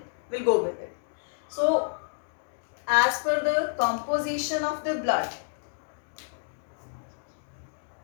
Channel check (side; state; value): right; silent; digital silence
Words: we'll go with it. So, as per the composition of the blood,